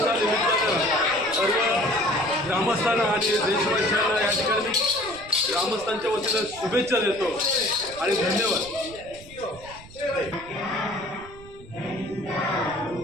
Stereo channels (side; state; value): right; noise; rumble, 19 dB below the sound